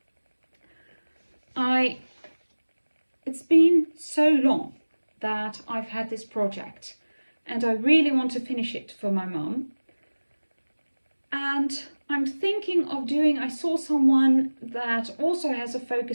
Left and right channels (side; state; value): both; inverted; correlation -1.00